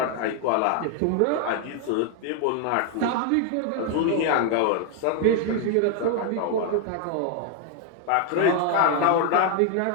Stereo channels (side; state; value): both; different; correlation 0.00